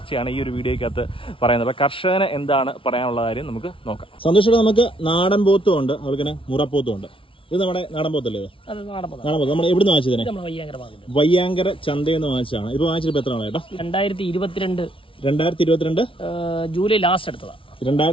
ഈ ഒരു വീഡിയോയ്ക്കകത്ത് പറയുന്നത്. അപ്പോൾ കർഷകന് എന്താണ് പറയാനുള്ള കാര്യം നമുക്ക് നോക്കാം. സന്തോഷേട്ടൻ, നമുക്ക് നാടൻ പോത്തും ഉണ്ട്, അവൾക്ക് തന്നെ മുറപ്പോത്തും ഉണ്ട്. ഇത് നമ്മുടെ നാടൻ പോത്തല്ലേ? നാടൻ പോത്ത്. നമ്മൾ എവിടെ നിന്ന് വാങ്ങിച്ചതിനെ? വയ്യാങ്കര ചന്തയിൽ നിന്ന് വാങ്ങിച്ചതാണ്. ഇപ്പൊ വാങ്ങിച്ചിട്ട് എത്ര ആളാ ചേട്ടാ? 2022 ജൂലൈ ലാസ്റ്റ് എടുത്തതാണ്.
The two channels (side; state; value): right; late; 0.25 ms